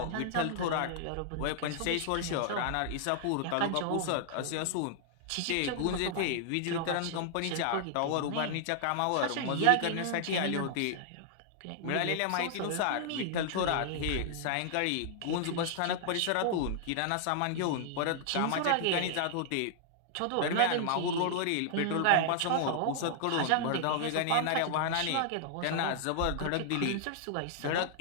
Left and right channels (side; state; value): both; different; correlation -0.01